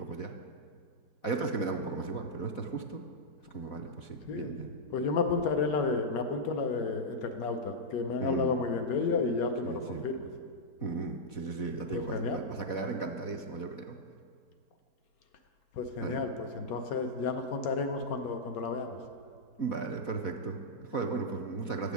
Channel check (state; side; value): late; right; 4.1 ms